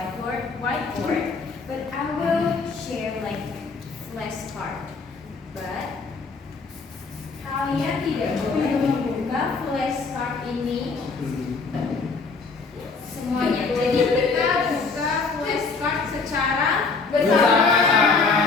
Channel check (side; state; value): right; quieter; 4.4 dB